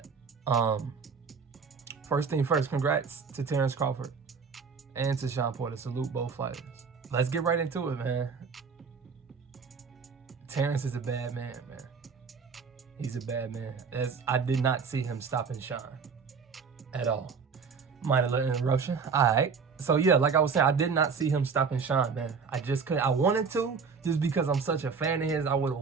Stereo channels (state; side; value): quieter; left; 5.5 dB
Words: First thing first, congrats to Terence Crawford and to Shawn Porter. Salute both fighters. Let's get right into it, man. Terence is a bad man, man. He's a bad man. I did not see him stopping Shawn at all. Minor little interruption. All right. So yeah, like I was saying, I did not see him stopping Shawn, man. I just couldn't. I wanted to, just because I'm such a fan of his. I would have